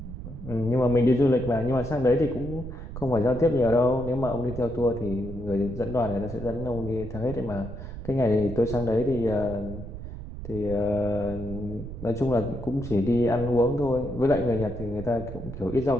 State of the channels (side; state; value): right; noise; rumble, 10 dB below the sound